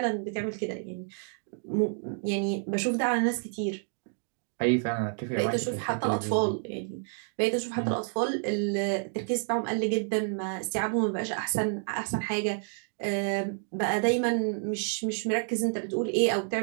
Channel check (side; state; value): left; silent; 58 dB below the other